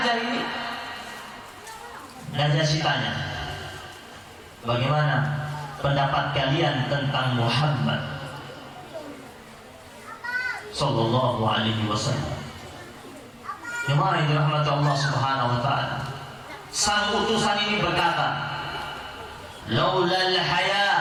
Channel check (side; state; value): both; identical; correlation 1.00